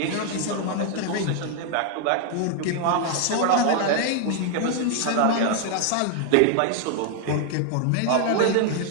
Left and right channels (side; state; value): both; different; correlation 0.00